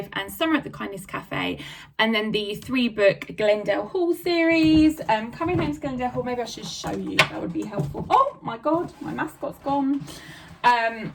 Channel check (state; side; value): identical; both; correlation 1.00